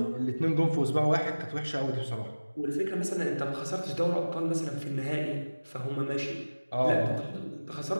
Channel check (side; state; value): both; inverted; correlation -1.00